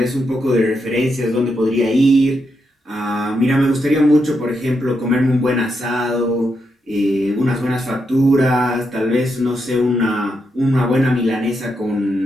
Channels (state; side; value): normal; both; correlation 0.82